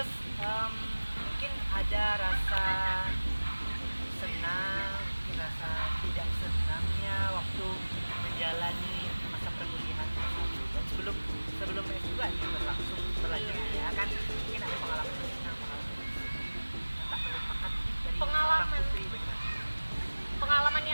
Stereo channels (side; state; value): both; inverted; correlation -1.00